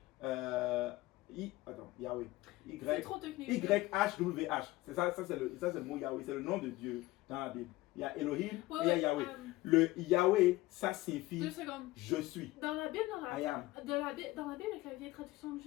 Attends, Yahweh. C'est trop technique. Y-H-W-H. C'est ça, c'est le mot Yahweh. C'est le nom de Dieu dans la Bible. Il y a Elohim et il y a Yahweh. Le Yahweh, ça signifie 2 secondes. je suis. Dans la Bible, I am. dans la Bible, avec la vieille traduction que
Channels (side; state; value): right; quieter; 18.9 dB